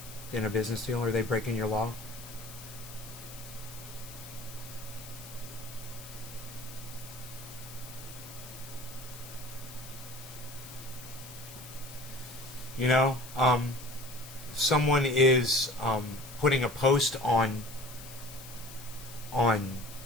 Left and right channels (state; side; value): noise; left; hiss, 15 dB below the sound